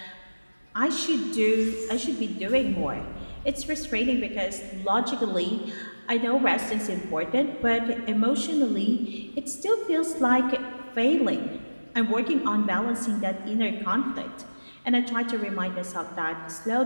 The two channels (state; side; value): inverted; both; correlation -1.00